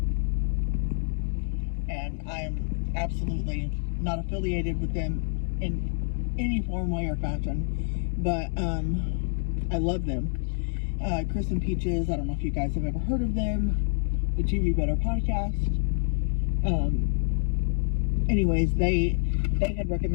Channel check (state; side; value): silent; right; digital silence